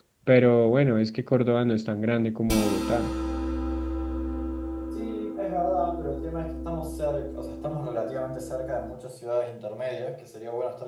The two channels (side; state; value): both; identical; correlation 1.00